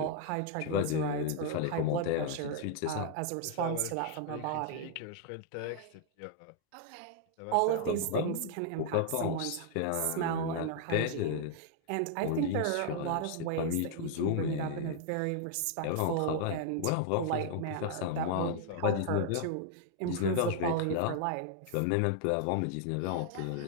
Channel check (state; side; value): different; both; correlation 0.00